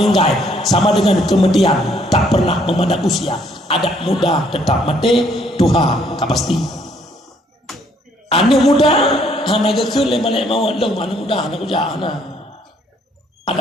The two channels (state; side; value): normal; both; correlation 0.66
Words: Sama dengan kemudian tak pernah memandang usia. Adat muda tetap mati, Tuhan tak pasti. Anak muda hana gekul balik mau long anak muda anak kerja hana.